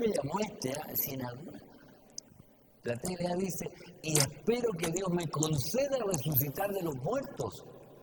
llamó si en alguna. La TLA dice, y espero que Dios me conceda resucitar de los muertos.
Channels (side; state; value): both; identical; correlation 1.00